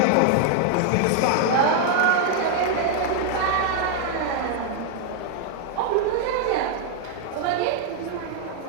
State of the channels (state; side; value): different; both; correlation 0.00